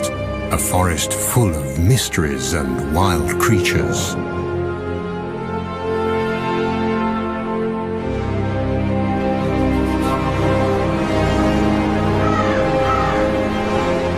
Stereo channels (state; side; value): identical; both; correlation 1.00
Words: a forest full of mysteries and wild creatures.